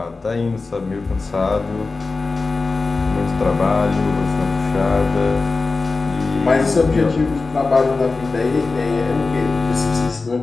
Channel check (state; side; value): quieter; right; 3.9 dB